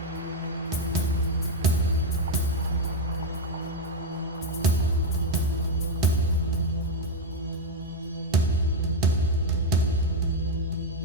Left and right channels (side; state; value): both; normal; correlation 0.06